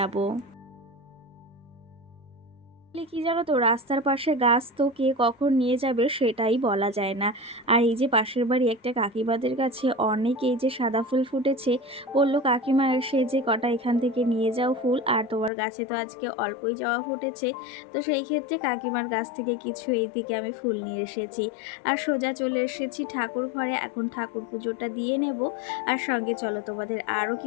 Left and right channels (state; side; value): drops out; right; at 15.5 s